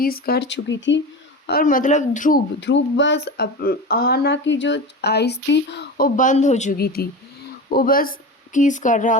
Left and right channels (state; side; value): normal; both; correlation 0.27